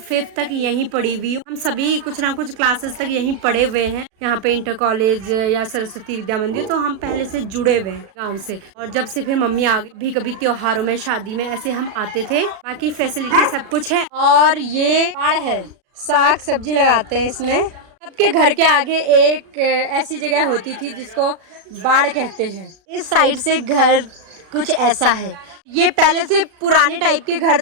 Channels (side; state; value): left; late; 37 ms